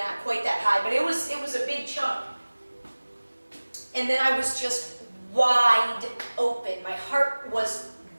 quite that high, but it was a big chunk. And then I was just wide open. My heart was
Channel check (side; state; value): both; inverted; correlation -1.00